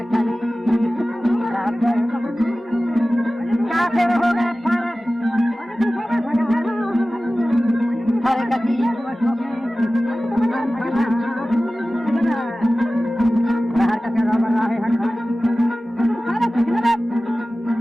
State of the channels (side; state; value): both; normal; correlation 0.96